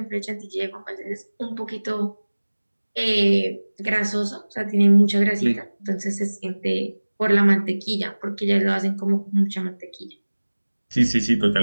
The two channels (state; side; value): inverted; both; correlation -1.00